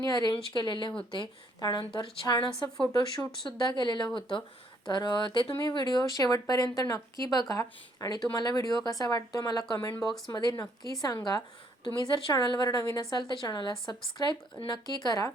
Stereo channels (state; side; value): normal; both; correlation 0.68